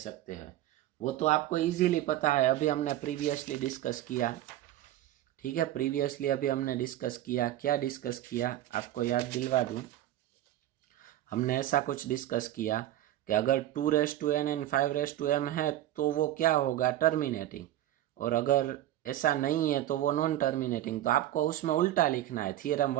हैं, वो तो आपको इजीली पता है, अभी हमने प्रीवियसली डिस्कस किया, ठीक है। प्रीवियसली अभी हमने डिस्कस किया, क्या डिस्कस किया आपको याद दिलवा दूं। हमने ऐसा कुछ डिस्कस किया कि अगर 2⁻n एंड 5⁻m है तो वो क्या होगा, टर्मिनेटिंग, और अगर ऐसा नहीं है तो वो नॉन टर्मिनेटिंग। तो आपको उसमें उल्टा लिखना है, थियरम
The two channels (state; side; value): quieter; left; 13.6 dB